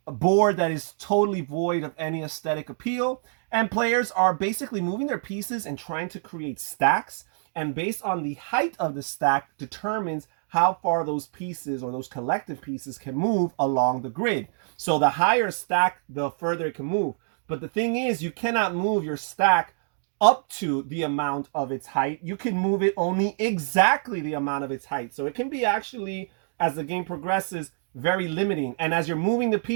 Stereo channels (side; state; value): left; silent; digital silence